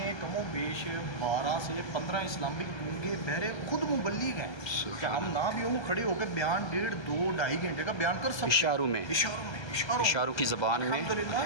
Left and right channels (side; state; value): right; late; 1.3 ms